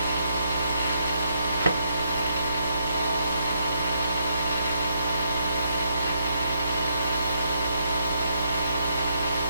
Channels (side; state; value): both; inverted; correlation -0.75